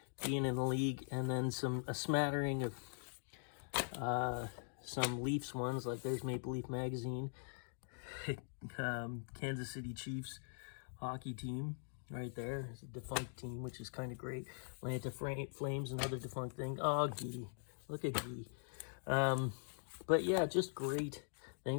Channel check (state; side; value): silent; right; digital silence